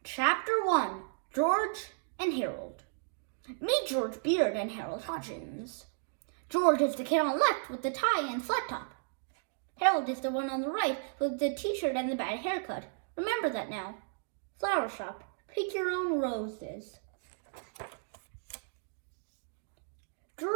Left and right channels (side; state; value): left; silent; digital silence